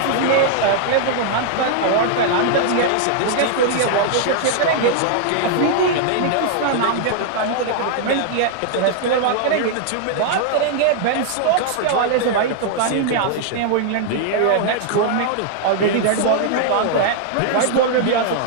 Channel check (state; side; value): different; both; correlation -0.01